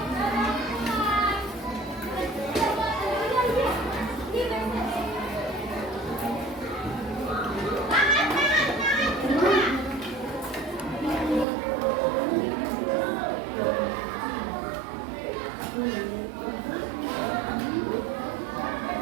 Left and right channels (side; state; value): left; drops out; at 11.5 s